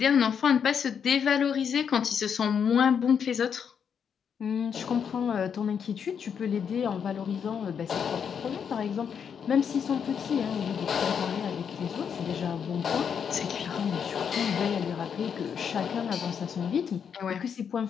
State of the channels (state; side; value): quieter; right; 7.3 dB